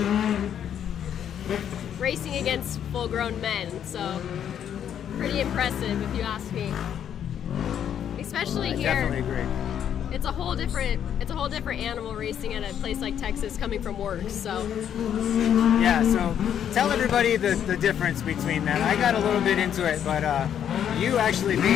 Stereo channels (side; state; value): right; quieter; 9.3 dB